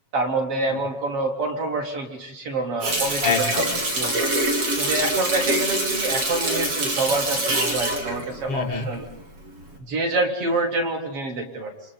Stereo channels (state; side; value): late; left; 7.3 ms